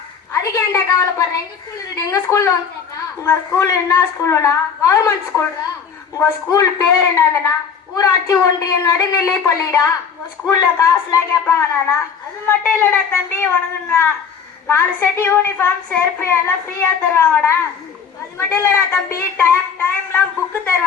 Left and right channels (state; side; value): quieter; right; 6.6 dB